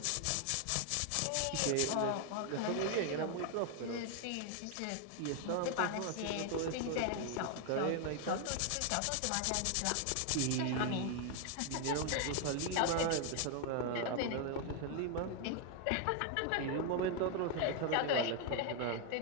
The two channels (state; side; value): different; both; correlation 0.01